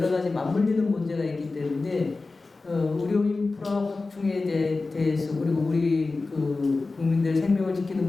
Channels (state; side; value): quieter; right; 3.6 dB